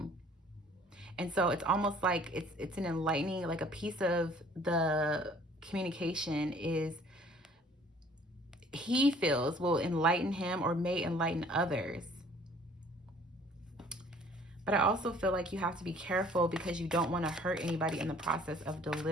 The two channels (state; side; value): normal; both; correlation 0.55